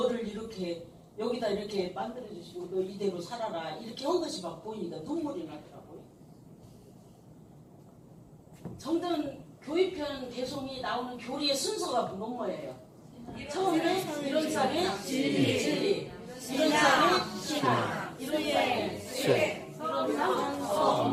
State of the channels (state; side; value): identical; both; correlation 1.00